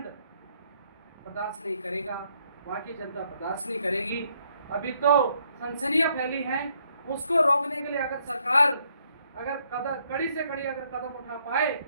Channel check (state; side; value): inverted; both; correlation -0.71